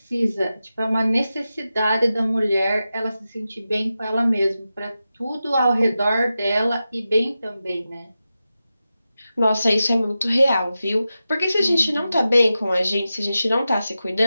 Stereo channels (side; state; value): both; inverted; correlation -0.92